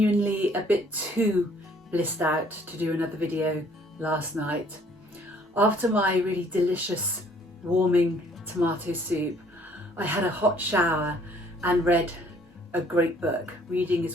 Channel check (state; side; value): normal; both; correlation 0.60